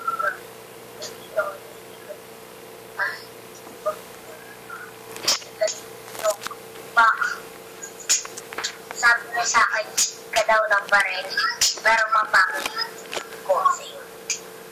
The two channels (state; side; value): identical; both; correlation 1.00